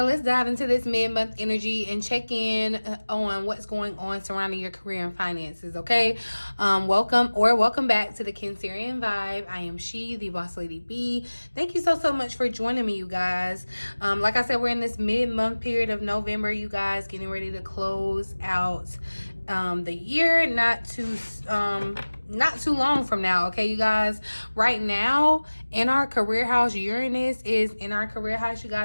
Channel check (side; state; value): both; inverted; correlation -1.00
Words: let's dive into this mid-month energy and check in on what's going on surrounding your career and finances, okay? Welcome back to the Cancerian Vibe. I am she, the boss lady B. Thank you so much for joining me, you guys. Like I said, we're in this mid-month period of November, you guys, getting ready to close out the year, not too long from now, okay, you guys. Right now in our career house, Uranus is in our career house, you